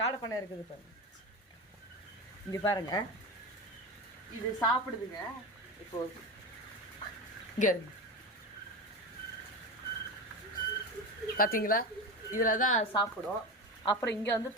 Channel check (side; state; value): both; normal; correlation 0.22